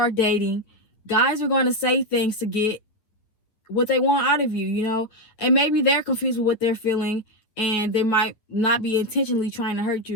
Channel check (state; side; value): late; right; 9.2 ms